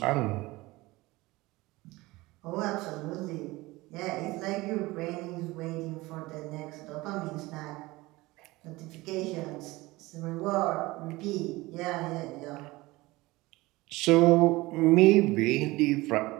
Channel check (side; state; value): left; quieter; 20.6 dB